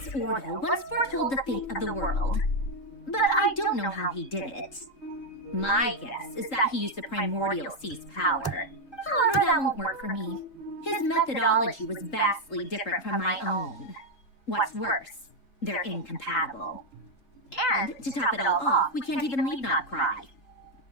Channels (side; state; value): right; late; 3.8 ms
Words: Ordo once foretold the fate of the world. But I don't know how he did it. My guess is that he used the primordial sea's power. However, that won't work for me. His methodology was vastly different from my own. What's worse, they're incompatible. And, to top it all off, we can't even leave Krai.